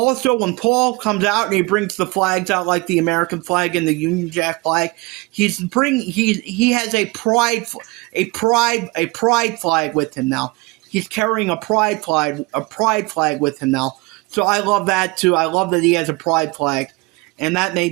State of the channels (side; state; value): left; quieter; 24.8 dB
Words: when Paul comes out and he brings the flags out, like the American flag and the Union Jack flag, he has a pride flag with him now. He's carrying a pride flag with him now. So I love that too. I love that he has a pride flag, and that